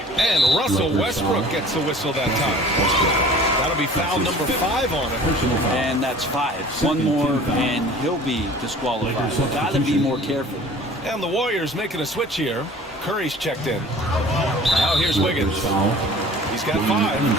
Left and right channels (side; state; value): both; normal; correlation 0.46